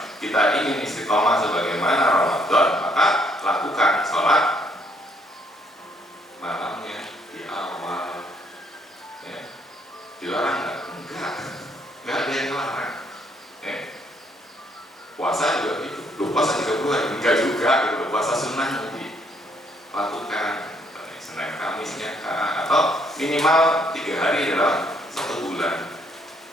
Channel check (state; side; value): normal; both; correlation 0.68